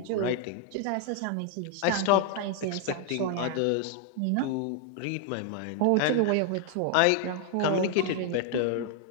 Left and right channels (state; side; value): different; both; correlation 0.00